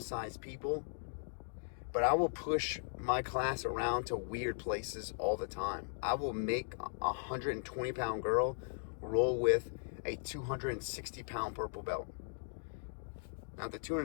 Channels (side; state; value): right; silent; digital silence